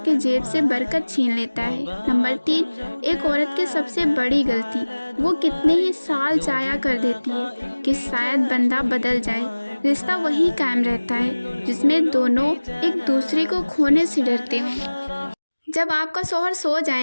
کے جیب سے برکت چھین لیتا ہے۔ نمبر 3، ایک عورت کی سب سے بڑی غلطی وہ کتنے ہی سال ضائع کر دیتی ہے کہ شاید بندہ بدل جائے، رشتہ وہی قائم رہتا ہے جس میں دونوں ایک دوسرے کو کھونے سے ڈرتے ہوں۔ جب آپ کا شوہر سو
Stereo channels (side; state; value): both; inverted; correlation -1.00